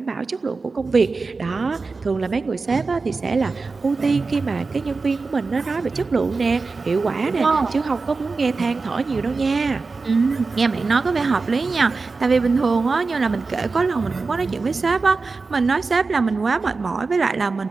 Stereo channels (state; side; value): quieter; left; 4.1 dB